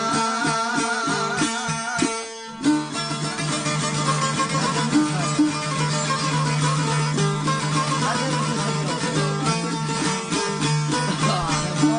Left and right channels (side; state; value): both; identical; correlation 1.00